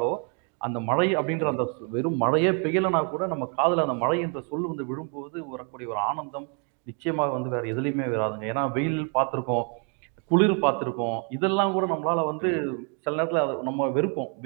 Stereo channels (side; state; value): left; quieter; 39.2 dB